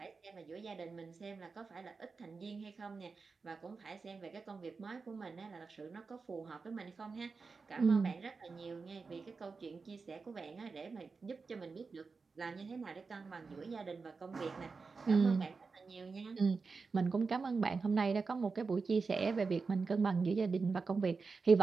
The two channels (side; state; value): left; quieter; 4.6 dB